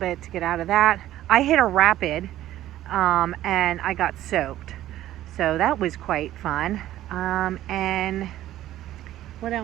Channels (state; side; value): quieter; left; 13.6 dB